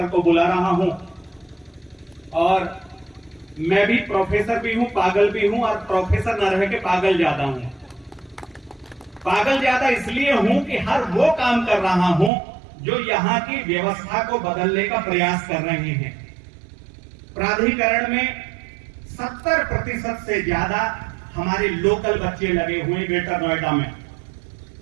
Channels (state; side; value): drops out; left; at 12.3 s